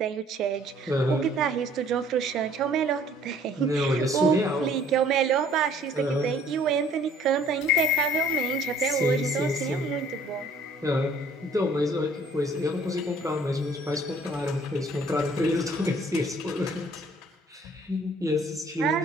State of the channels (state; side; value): normal; both; correlation 0.57